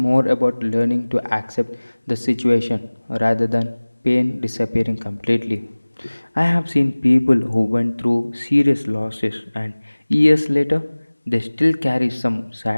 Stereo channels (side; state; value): both; inverted; correlation -1.00